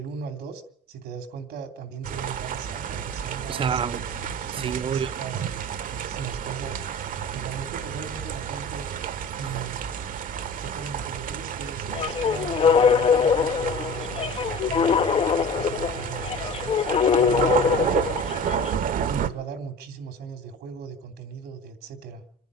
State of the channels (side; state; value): both; normal; correlation 0.37